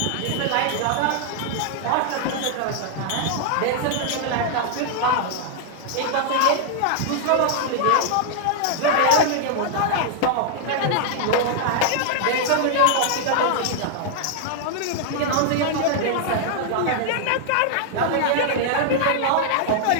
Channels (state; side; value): different; both; correlation -0.01